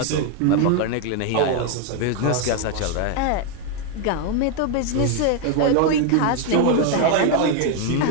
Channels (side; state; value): both; different; correlation 0.01